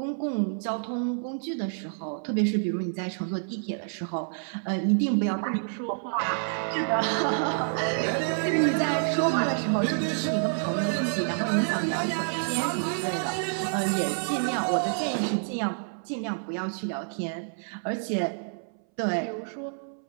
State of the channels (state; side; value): silent; left; 59 dB below the other